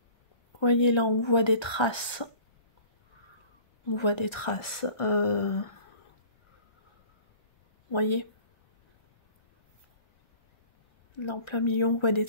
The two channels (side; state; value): right; late; 1.3 ms